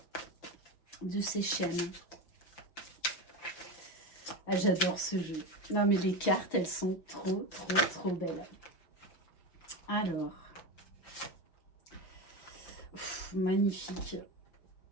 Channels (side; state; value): right; late; 5.8 ms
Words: de ses chaînes. Ah, j'adore ce jeu. Non, mais les cartes, elles sont trop, trop, trop belles. Alors, magnifique.